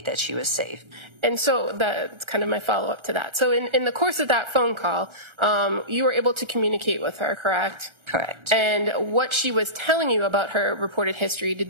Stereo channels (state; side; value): late; left; 1.4 ms